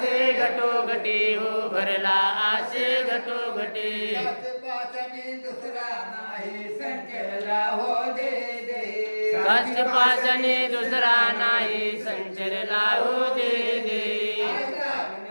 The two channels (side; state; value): both; inverted; correlation -1.00